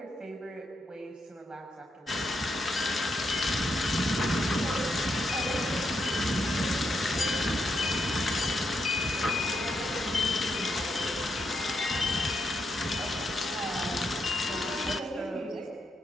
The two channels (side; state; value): both; normal; correlation 0.80